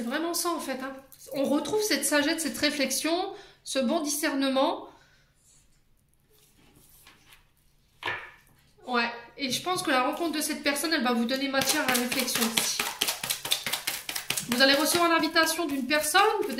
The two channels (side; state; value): both; identical; correlation 1.00